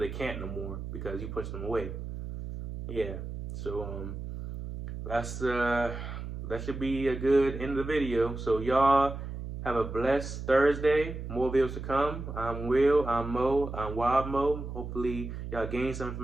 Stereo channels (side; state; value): right; noise; hum, 7 dB below the sound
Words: can't no more because you push them away. Yeah. So that's that should be a good end of the video. So y'all have a blessed Thursday. More videos to come. I'm Will. I'm Mo. I'm Wild Mo. Hopefully y'all gain some